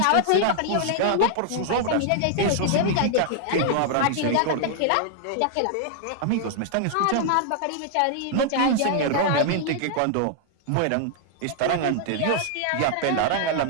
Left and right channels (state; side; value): different; both; correlation -0.01